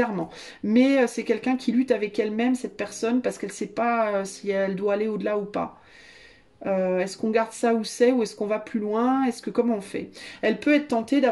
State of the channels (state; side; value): identical; both; correlation 1.00